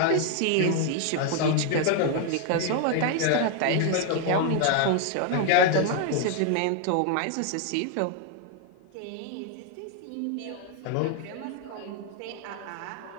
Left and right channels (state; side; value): different; both; correlation 0.00